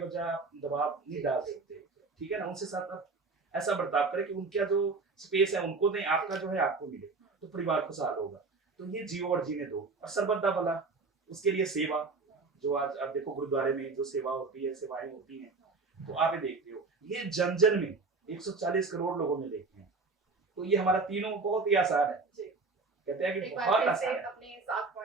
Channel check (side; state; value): left; quieter; 4.1 dB